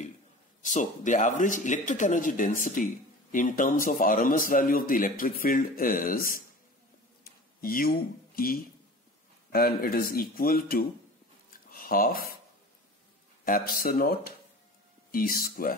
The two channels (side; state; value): both; normal; correlation 0.39